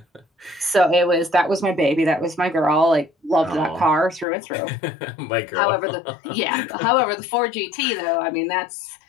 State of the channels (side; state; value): right; drops out; at 4.2 s